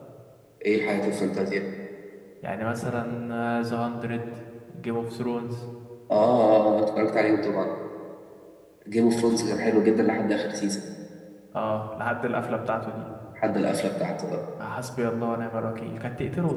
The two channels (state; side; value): identical; both; correlation 1.00